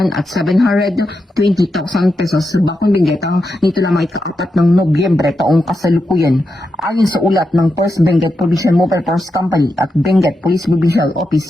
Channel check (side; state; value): both; normal; correlation 0.87